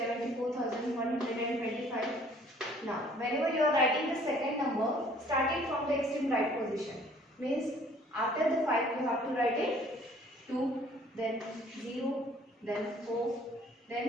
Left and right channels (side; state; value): both; normal; correlation 0.56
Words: Now, whenever you are writing the second number, starting from the extreme right position. Means after the 5 you have to write it 2, then 0, then 4,